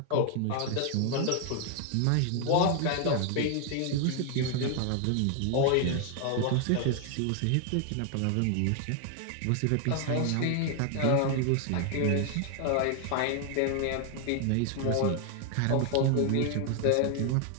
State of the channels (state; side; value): different; both; correlation 0.00